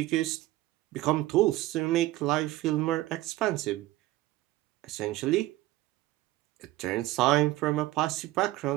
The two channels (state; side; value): quieter; left; 17.1 dB